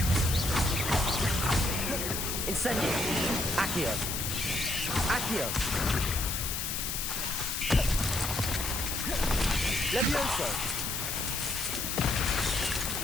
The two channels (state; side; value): noise; left; hiss, 2 dB below the sound